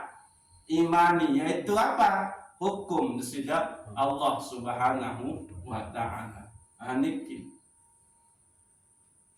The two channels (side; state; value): both; identical; correlation 1.00